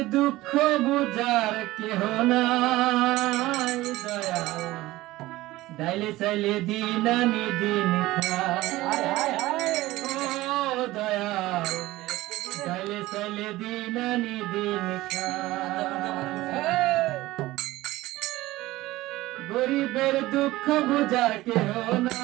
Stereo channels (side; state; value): left; quieter; 17.8 dB